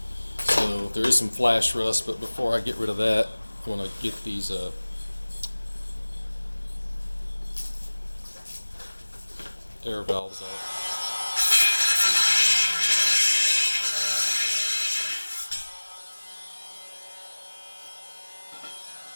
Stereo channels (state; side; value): inverted; both; correlation -1.00